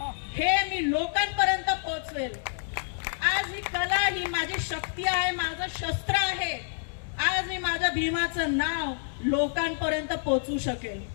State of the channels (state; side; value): silent; right; 59 dB below the other